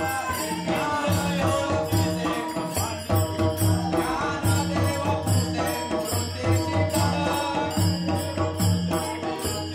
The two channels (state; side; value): identical; both; correlation 1.00